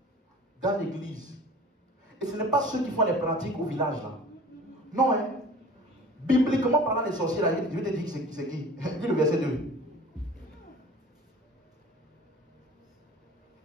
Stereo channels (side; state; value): both; normal; correlation 0.43